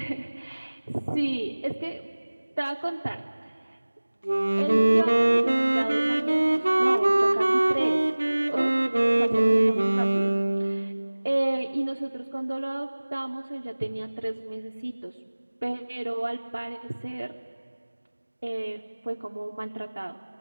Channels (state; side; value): inverted; both; correlation -1.00